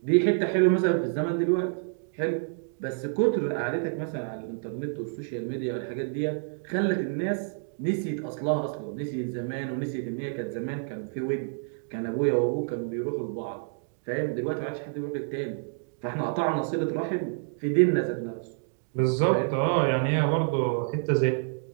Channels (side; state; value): left; silent; digital silence